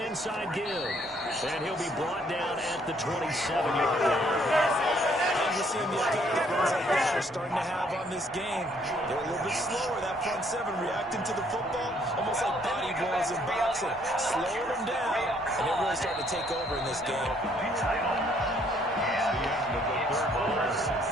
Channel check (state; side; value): normal; both; correlation 0.66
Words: give. And he'll be brought down at the 27-yard line. And we're seeing the effect that runs like that are starting to have on this game. They're a little bit slower, that front 7, reacting to the football, almost like body blows in boxing. Slowing them down, and they're really starting to take over in this game.